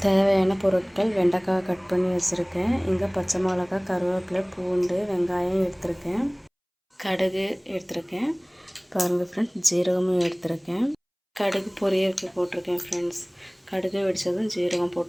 தேவையான பொருட்கள்: வெண்டைக்காய் கட் பண்ணி வச்சுருக்கேன். இங்கே பச்சை மிளகா, கருவேப்பிலை, பூண்டு, வெங்காயம் எடுத்திருக்கேன். கடுகு எடுத்திருக்கேன். பாருங்கள் ஃப்ரெண்ட்ஸ், ஜீரகமும் எடுத்திருக்கேன். கடுகு பொரியலுக்கு போட்டிருக்கேன் ஃப்ரெண்ட்ஸ். கடுகு வெடித்ததும் ஜீரகம்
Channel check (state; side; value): identical; both; correlation 1.00